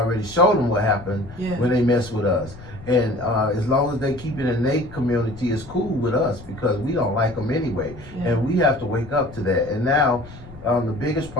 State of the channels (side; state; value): left; noise; rumble, 17 dB below the sound